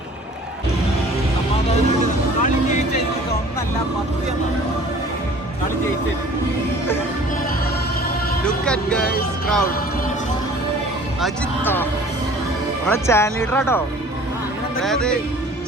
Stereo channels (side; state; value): both; normal; correlation 0.49